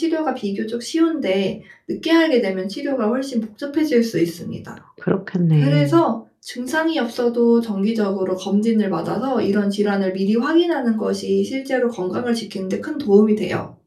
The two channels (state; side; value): identical; both; correlation 1.00